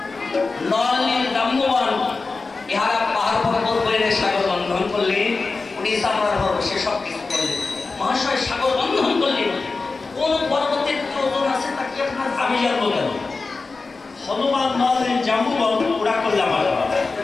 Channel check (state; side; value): quieter; right; 4.0 dB